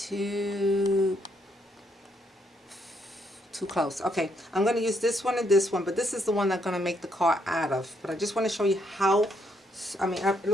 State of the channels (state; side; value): normal; both; correlation 0.74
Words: too close. Okay, I'm gonna use this one and this one, but this is the one I'm gonna make the card out of. But I just want to show you how, I mean,